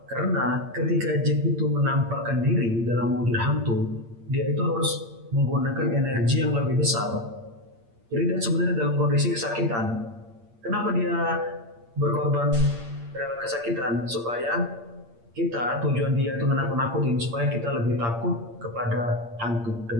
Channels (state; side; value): late; left; 8.7 ms